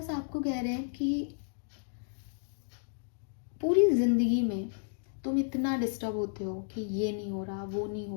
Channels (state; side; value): silent; right; digital silence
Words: आपको कह रहे हैं कि पूरी जिंदगी में तुम इतना डिस्टर्ब होते हो कि ये नहीं हो रहा, वो नहीं